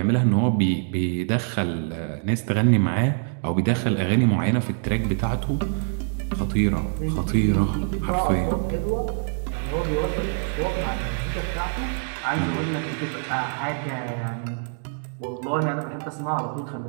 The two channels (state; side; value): silent; left; 62 dB below the other